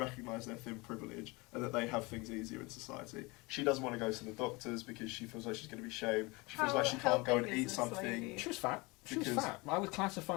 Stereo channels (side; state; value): right; quieter; 25.4 dB